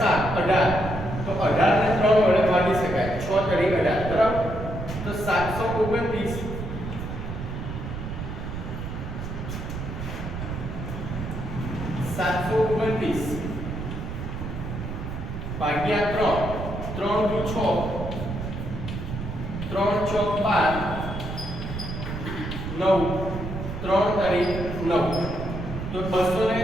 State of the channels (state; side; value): noise; right; rumble, 6 dB below the sound